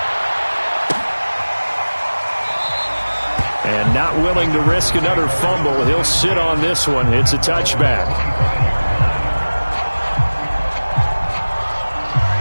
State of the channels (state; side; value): inverted; both; correlation -1.00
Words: And not willing to risk another fumble. He'll sit on this one. It's a touchback.